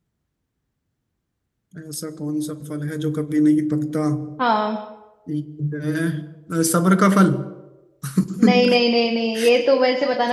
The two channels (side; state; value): both; identical; correlation 1.00